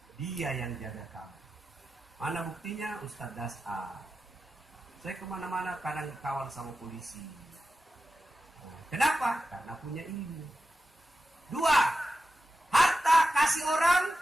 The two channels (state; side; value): normal; both; correlation 0.92